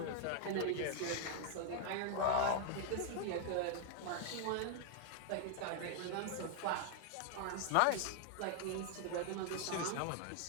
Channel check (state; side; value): different; both; correlation 0.00